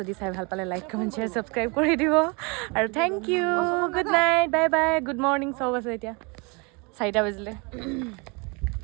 চাই ভাল পালে লাইক কমেণ্ট শ্বেয়াৰ ছাবস্ক্ৰাইব কৰি দিব আৰু thank you good night bye bye good morning চব আছে এতিয়া 4টা বাজিলে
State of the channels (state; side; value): quieter; left; 30.3 dB